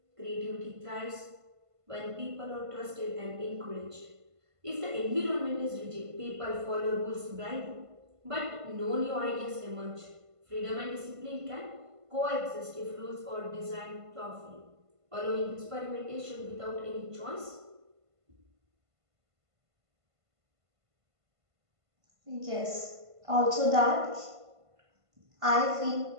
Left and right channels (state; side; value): late; left; 1.5 ms